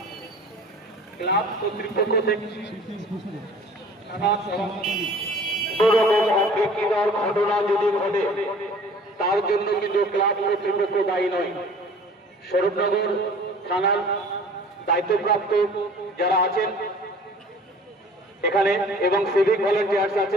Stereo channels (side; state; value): both; normal; correlation 0.48